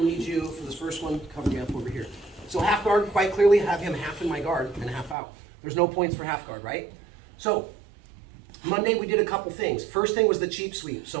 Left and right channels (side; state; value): left; drops out; at 5.2 s